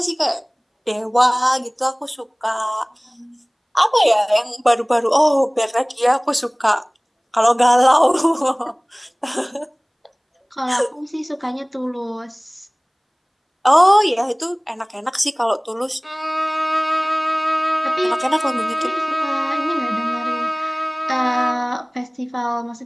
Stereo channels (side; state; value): both; identical; correlation 1.00